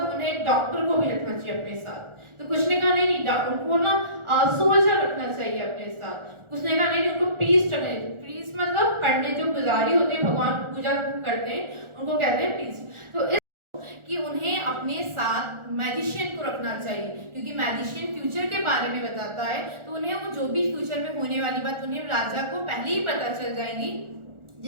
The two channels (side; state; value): left; late; 1.4 ms